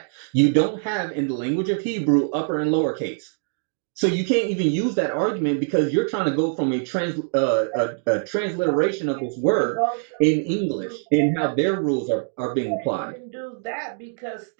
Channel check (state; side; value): silent; left; digital silence